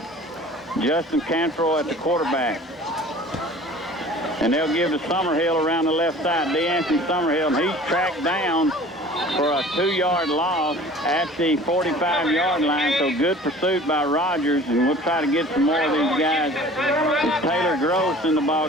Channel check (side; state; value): both; normal; correlation 0.45